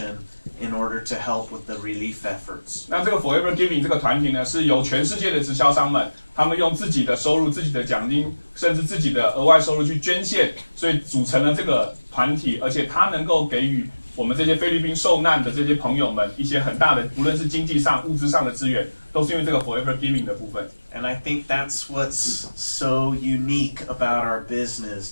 in order to help with the relief efforts. 那这个 Forever Giving 这个团体呢，是由全世界的直销商们，他们用自己的收入、自己的奖金，甚至自己的额外收入去捐献，所以组成了这个团体，而且它能够给予我们这些菲律宾受难的这些朋友们一些很大的，无论是经济上、物质上的资源，都是因为这个 Forever Giving 的部分。And I think that's what's so unique about our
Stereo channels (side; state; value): both; inverted; correlation -1.00